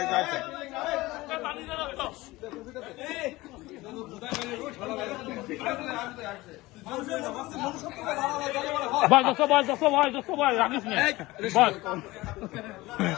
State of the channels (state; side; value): quieter; right; 19.8 dB